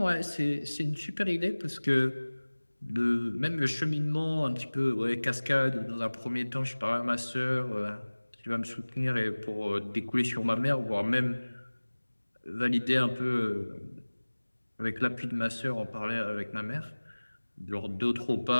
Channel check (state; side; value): inverted; both; correlation -1.00